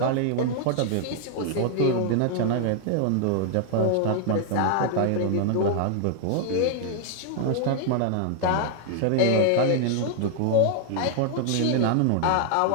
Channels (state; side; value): different; both; correlation 0.00